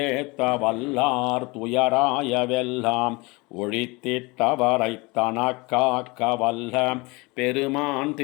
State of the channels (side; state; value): right; quieter; 25.4 dB